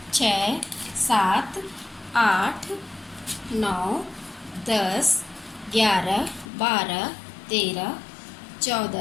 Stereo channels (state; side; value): drops out; right; at 6.5 s